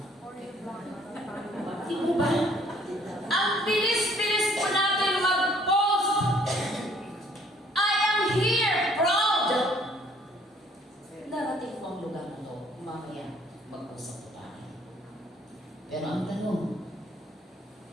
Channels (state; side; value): normal; both; correlation 0.61